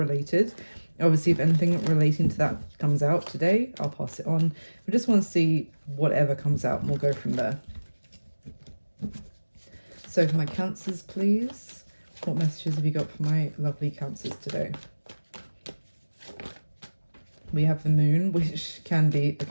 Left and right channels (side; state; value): both; inverted; correlation -1.00